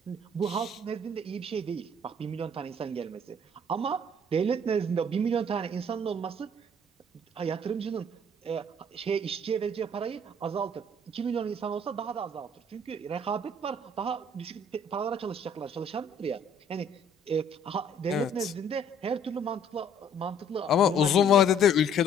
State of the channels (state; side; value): normal; both; correlation 0.59